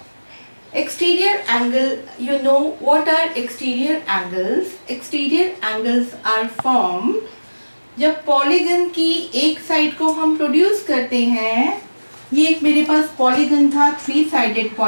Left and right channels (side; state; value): both; inverted; correlation -1.00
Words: Exterior angle, you know what are exterior angles? Exterior angles are formed जब पॉलीगन की एक साइड को हम प्रोड्यूस करते हैं। ये एक मेरे पास पॉलीगन था, 3 साइडेड